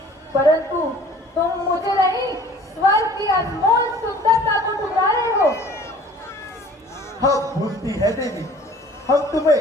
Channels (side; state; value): both; normal; correlation 0.50